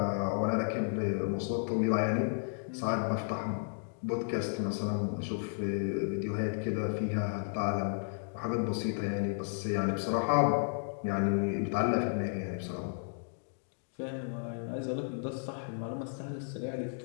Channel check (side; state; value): right; silent; digital silence